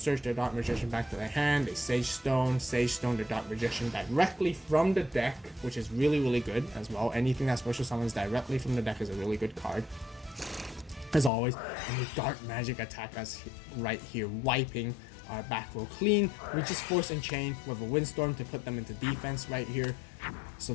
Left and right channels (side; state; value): right; drops out; at 11.3 s